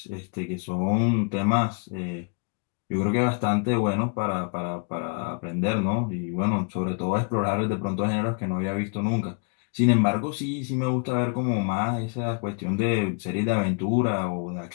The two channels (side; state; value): right; quieter; 37.0 dB